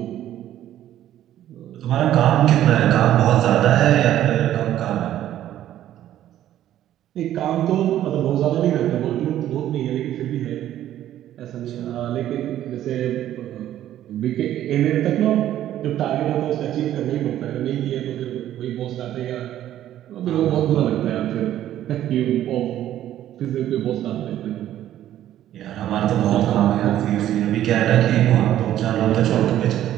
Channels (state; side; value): quieter; left; 12.3 dB